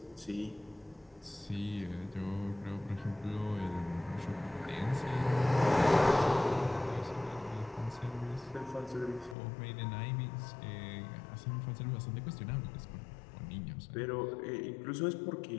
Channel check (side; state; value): right; drops out; at 9.3 s